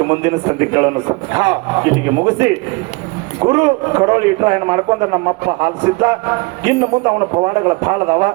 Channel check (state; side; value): quieter; left; 26.3 dB